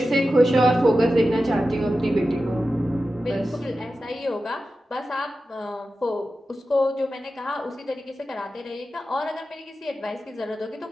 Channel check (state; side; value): normal; both; correlation 0.93